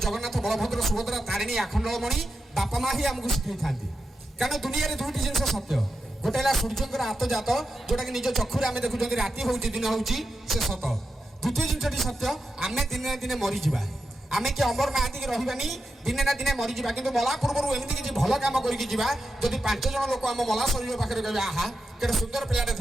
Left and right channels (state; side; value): normal; both; correlation 0.88